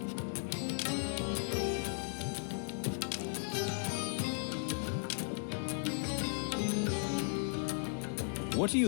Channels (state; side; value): silent; right; digital silence